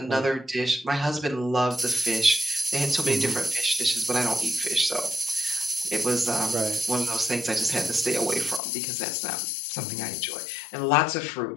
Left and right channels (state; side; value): drops out; right; at 8.6 s